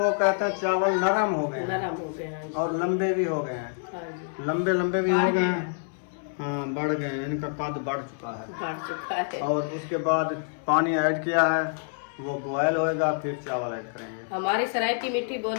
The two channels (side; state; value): right; silent; digital silence